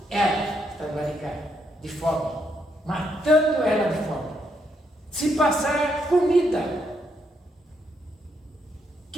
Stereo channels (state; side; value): normal; both; correlation 0.77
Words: ela, está barrigada, de fome. Matando ela de fome. Se passar comida,